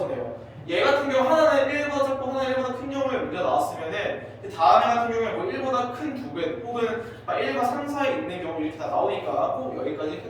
내요. 얘 같은 경우 하나는 1보다 작고 하나는 1보다 큰 경우에 문제가 나왔으면은 다음 애 같은 경우에 뭐 1보다 큰 두 배 혹은 1과 3 사이에 있는 경우 이렇게 다 나오니까 꼭 여기까지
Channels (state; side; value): identical; both; correlation 1.00